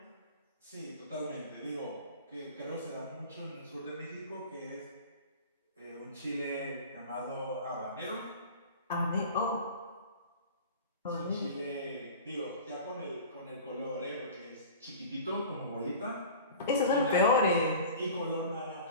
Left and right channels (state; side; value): inverted; both; correlation -0.38